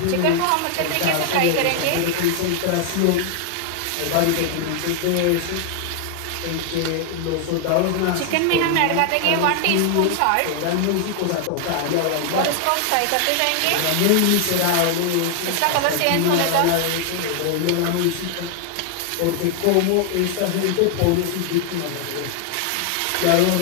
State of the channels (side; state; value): both; different; correlation 0.00